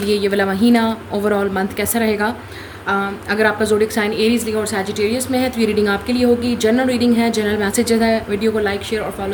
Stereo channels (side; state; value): both; identical; correlation 1.00